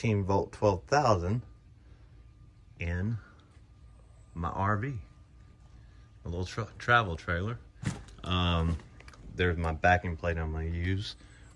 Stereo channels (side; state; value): both; identical; correlation 1.00